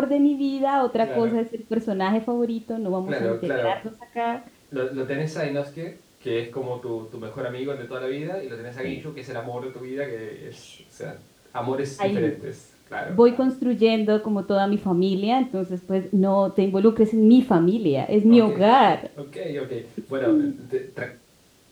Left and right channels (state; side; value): identical; both; correlation 1.00